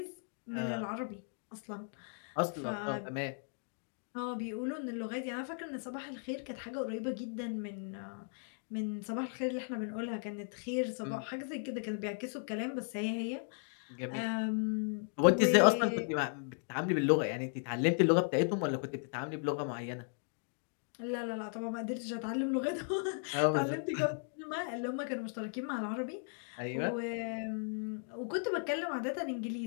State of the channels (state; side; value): silent; right; 54 dB below the other